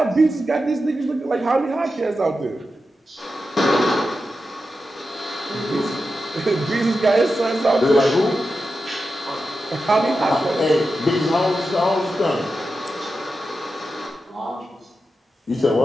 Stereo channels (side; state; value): both; normal; correlation 0.90